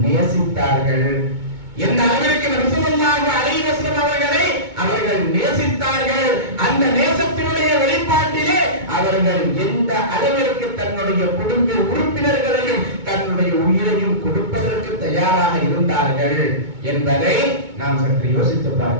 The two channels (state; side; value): late; left; 2.2 ms